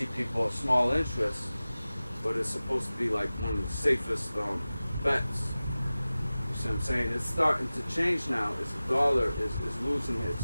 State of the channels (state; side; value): inverted; both; correlation -0.97